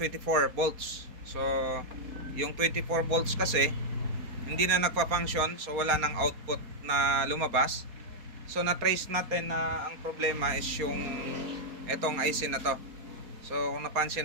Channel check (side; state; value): left; late; 4.3 ms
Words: volts. So yung 24 volts kasi hindi na nagpa-function, so wala nang output na lumabas. So na-trace natin na ang problema is yung etong IC na to. So kung